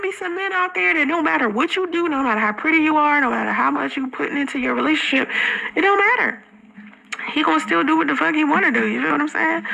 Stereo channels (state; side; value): identical; both; correlation 1.00